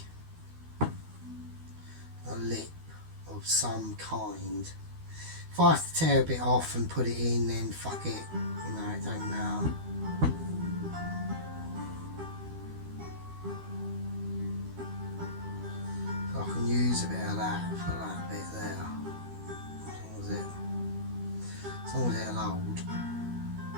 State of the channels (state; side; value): late; left; 12 ms